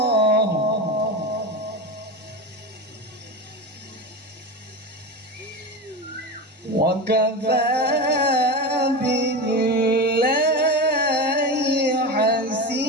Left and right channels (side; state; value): both; normal; correlation 0.22